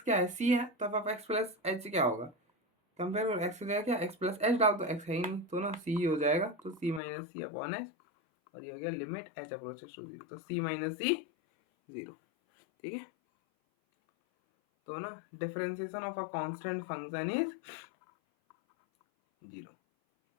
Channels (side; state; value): right; drops out; at 7.0 s